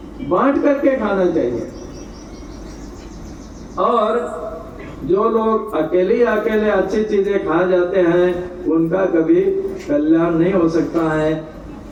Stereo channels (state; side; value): identical; both; correlation 1.00